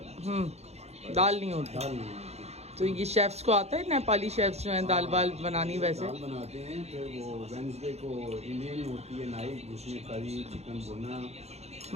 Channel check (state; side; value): late; left; 0.31 ms